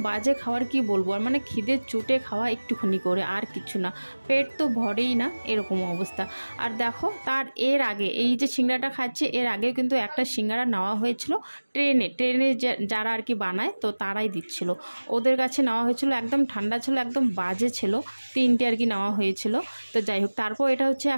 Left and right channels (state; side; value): inverted; both; correlation -1.00